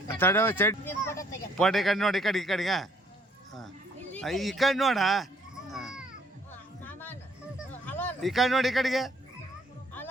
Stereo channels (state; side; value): normal; both; correlation 0.63